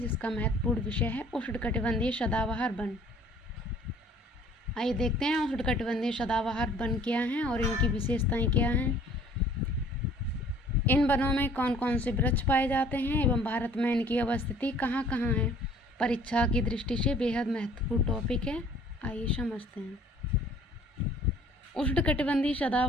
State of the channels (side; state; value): both; normal; correlation 0.54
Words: महत्वपूर्ण विषय है उष्णकटिबंधीय सदाबहार वन। आइए देखते हैं उष्णकटिबंधीय सदाबहार वन क्या हैं और इनकी विशेषताएं क्या हैं। इन वनों में कौन कौन से वृक्ष पाए जाते हैं एवं भारत में इनकी अवस्थिति कहाँ कहाँ है। परीक्षा की दृष्टि से बेहद महत्वपूर्ण टॉपिक है। आइए समझते हैं। उष्णकटिबंधीय